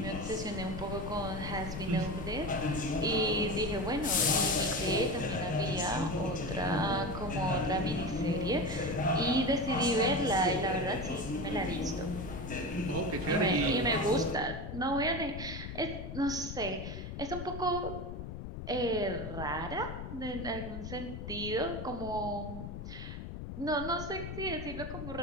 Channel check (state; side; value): noise; left; rumble, 8 dB below the sound